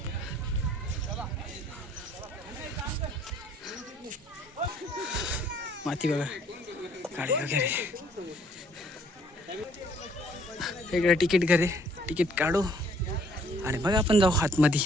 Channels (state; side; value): normal; both; correlation 0.62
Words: माती बघा, गाडी वगैरे. वेगळं तिकीट घरे, तिकीट काढू आणि मग आपण जाऊ आतमध्ये.